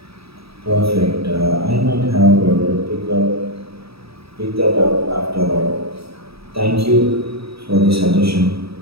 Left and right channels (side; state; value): left; late; 0.77 ms